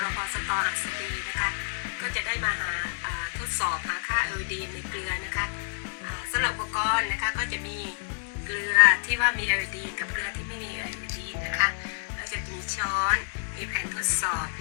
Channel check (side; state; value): right; silent; digital silence